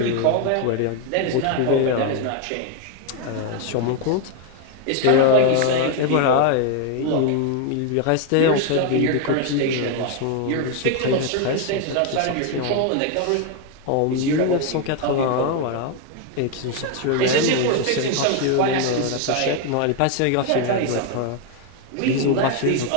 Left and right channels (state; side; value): different; both; correlation 0.01